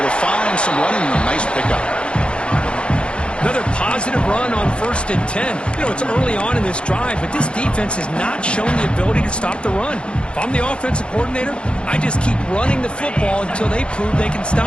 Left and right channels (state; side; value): late; right; 0.057 ms